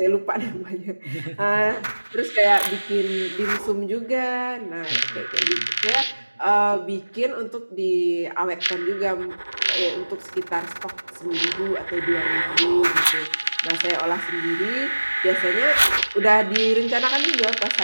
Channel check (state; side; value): inverted; both; correlation -1.00